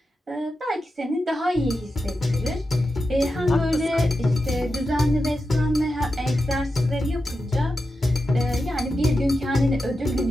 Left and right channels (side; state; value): both; normal; correlation 0.90